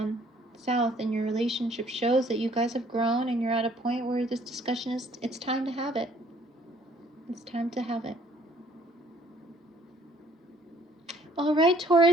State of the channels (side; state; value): both; normal; correlation 0.60